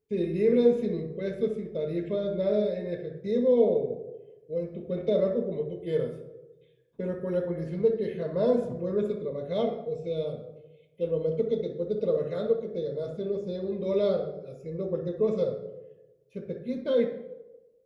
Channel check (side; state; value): both; identical; correlation 1.00